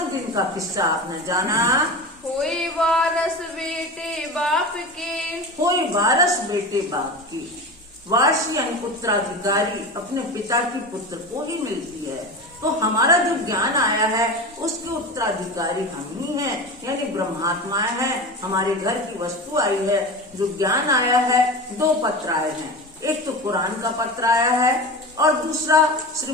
दिन का किस्सा आपने जाना। हुई वारस बेटे बाप के, कोई वारस बेटे बाप की, वारसी यानी पुत्राधिकारी अपने पिता की पुत्र को ही मिलती है। तो हमारा जो ज्ञान आया है उसके उत्तराधिकारी हम ही हैं, यानी ब्रह्मात्माएं हैं। हमारे घर की वस्तु आई है, जो ज्ञान आया है। 2 पत्र आए हैं, एक तो कुरान का पत्र आया है और दूसरा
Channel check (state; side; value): normal; both; correlation 0.28